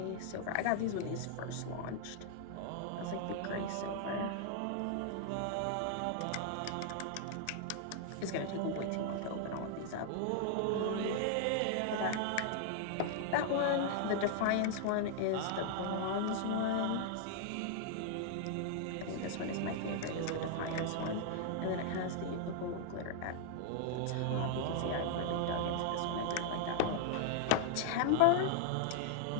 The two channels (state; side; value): different; both; correlation 0.00